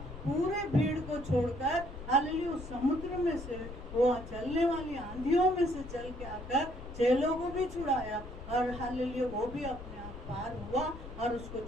पूरे भीड़ को छोड़कर हालेलुया उस समुद्र में से, वो चलने वाली आंधियों में से चल के आकर चेलों को भी छुड़ाया और हालेलुया वो भी अपने आप पार हुआ और उसको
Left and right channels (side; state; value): left; noise; rumble, 12 dB below the sound